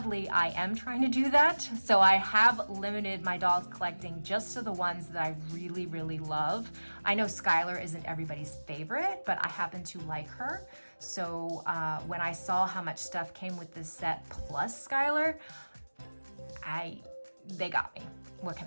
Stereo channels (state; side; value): inverted; both; correlation -1.00